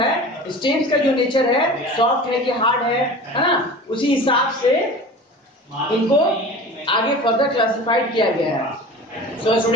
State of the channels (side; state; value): both; normal; correlation 0.37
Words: है, स्टेम्स का जो नेचर है, सॉफ्ट है कि हार्ड है ना, उसी हिसाब से इनको आगे फर्दर क्लासिफाइड किया गया है। सो